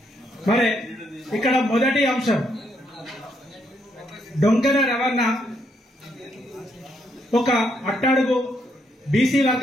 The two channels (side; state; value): both; normal; correlation 0.75